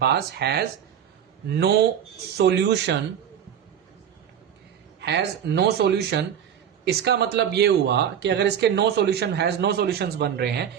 पास has no solution has no solution, इसका मतलब ये हुआ कि अगर इसके no solution has no solutions बन रहे हैं,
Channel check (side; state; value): left; quieter; 8.9 dB